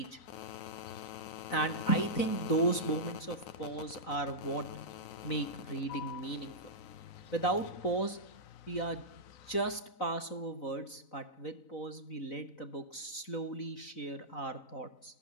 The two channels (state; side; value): late; right; 4.0 ms